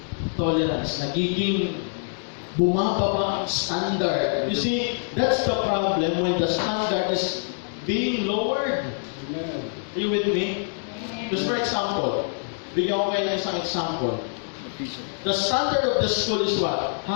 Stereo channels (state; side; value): silent; right; digital silence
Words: Tolerance, nagiging bumababa ang standard. You see, that's the problem when the standard is being lowered. Amen. Are you with me? Just for example, bigyan ko kayo ng isang example. The standard of the school is what?